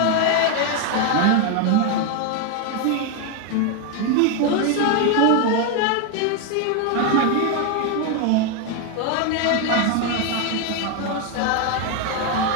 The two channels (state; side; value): different; both; correlation 0.01